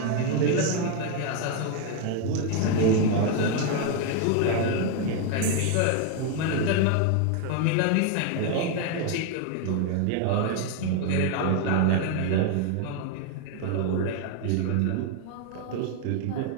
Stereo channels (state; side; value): different; both; correlation 0.01